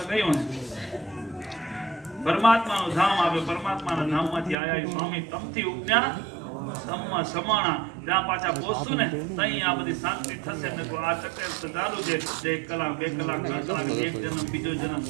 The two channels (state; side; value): drops out; left; at 4.5 s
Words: કયું પરમાત્માનું ધામ આવે. પરમાત્માના ધામમાંથી આયા સ્વામી તમથી ઉપજ્ઞા ધમ્મ સમાણા. ત્યાં પાછા પહોંચશું ને તઈ આ બધી શાંતિ થશે ને તો આ ચક્કર ચાલુ છે. 1 કલાક 2 કલાક 3 કલાક એક જન્મ બીજો જન્મ